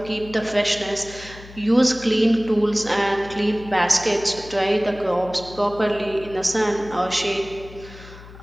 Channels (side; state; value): left; noise; hum, 18 dB below the sound